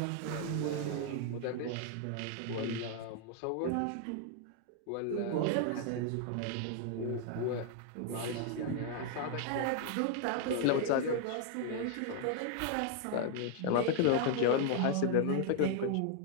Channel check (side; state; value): both; different; correlation 0.00